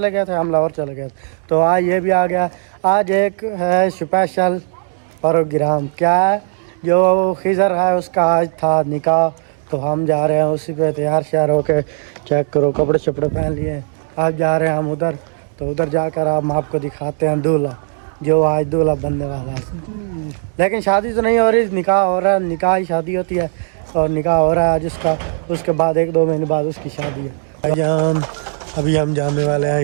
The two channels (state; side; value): silent; left; digital silence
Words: गए थे, हम लाहौर चले गए थे। तो आज ये भी आ गया। आज एक है स्पेशल प्रोग्राम, क्या है, जो खिज़र है उसका आज था निकाह। तो हम जा रहे हैं उसी पे तैयार श्यार होके। चेक करो, कपड़े शपड़े पहन लिए। आप जा रहे हैं हम उधर, तो उधर जाकर हम आपको दिखाते हैं दूल्हा, जो आज दूल्हा बनने वाला है। लेकिन शादी तो नहीं हो रही, निकाह हो रहा है। निकाह ही शादी होती है और निकाह हो रहा है आज उसका। उसके बाद 1-2 महीने बाद उसकी शादी है। भाईजान अभी हम जाने वाले हैं